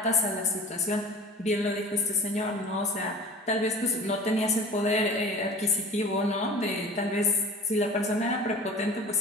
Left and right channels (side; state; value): both; normal; correlation 0.41